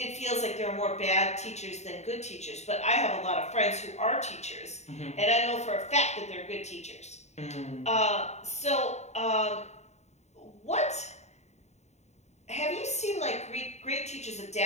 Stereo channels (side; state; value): right; late; 0.32 ms